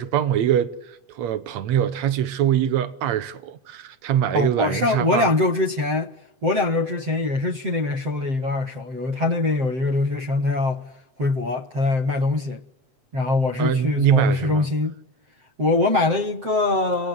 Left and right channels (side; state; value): left; late; 7.7 ms